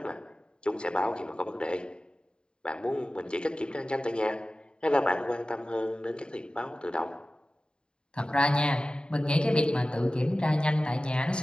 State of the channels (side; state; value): right; late; 0.050 ms